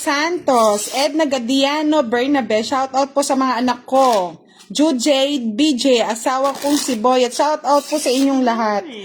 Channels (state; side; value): identical; both; correlation 1.00